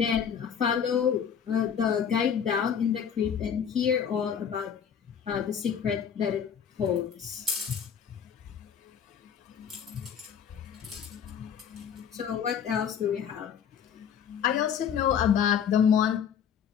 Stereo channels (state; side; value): quieter; right; 7.9 dB